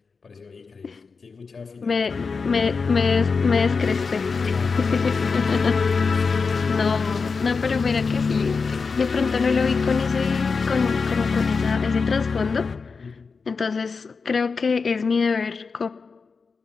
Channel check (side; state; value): right; quieter; 4.8 dB